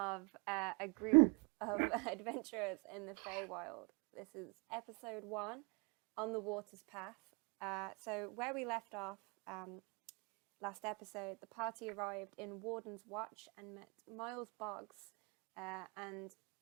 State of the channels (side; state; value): left; quieter; 30.3 dB